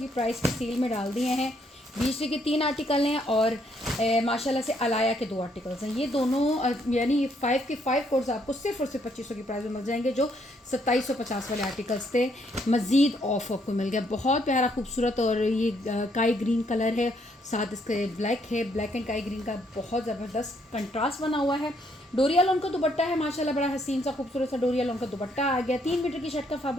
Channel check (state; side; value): normal; both; correlation 0.71